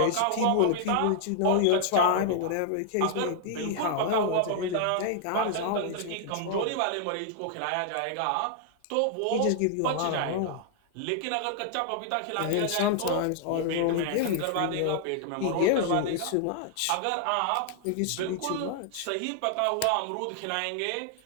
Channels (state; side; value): different; both; correlation 0.00